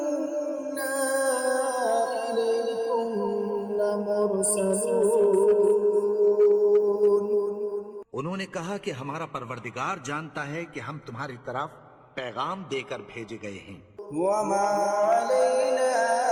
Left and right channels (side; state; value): both; identical; correlation 1.00